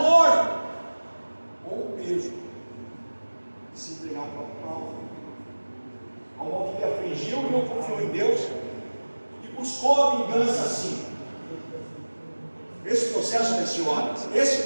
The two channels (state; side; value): inverted; both; correlation -1.00